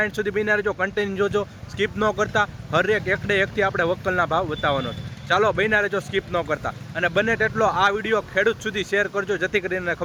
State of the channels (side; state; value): both; identical; correlation 1.00